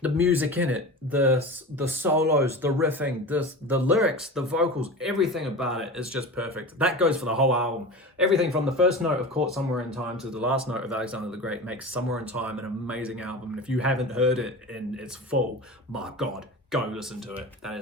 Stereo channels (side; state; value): both; normal; correlation 0.30